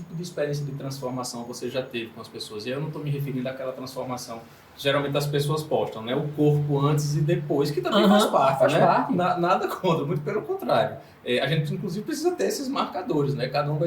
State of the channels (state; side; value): identical; both; correlation 1.00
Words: de experiência de transformação você já teve com as pessoas? E eu não estou me referindo àquela transformação que geralmente as pessoas postam, né? O corpo antes e depois, que também faz parte, né? Nada contra, muito pelo contrário. A gente, inclusive, precisa ter esses marcadores, né? Cada um